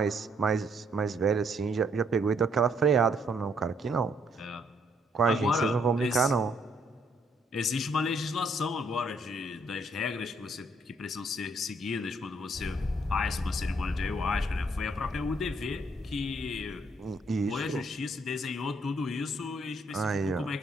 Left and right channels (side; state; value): both; normal; correlation 0.69